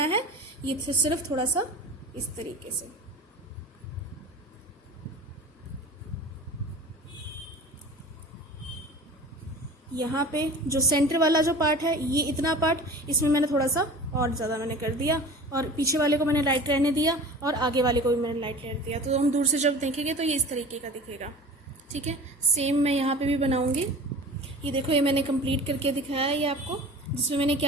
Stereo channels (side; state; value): both; normal; correlation 0.38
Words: है, ये सिर्फ थोड़ा सा इस तरीके से यहाँ पे जो सेंटर वाला जो पार्ट है, ये इतना पार्ट इसमें मैंने थोड़ा सा और ज़्यादा मैंने कर दिया और पीछे वाले को मैंने लाइट रहने दिया और आगे वाले को भी मैंने लाइट रहने दिया। तो हम दूर से जब देखेंगे तो ये इस तरीके का दिखेगा, ठीक है। सेम मैं यहाँ पे भी बनाऊंगी। ये देखो, ये मैंने कंप्लीट करके दिखाया है ये आपको, जिसमें मैंने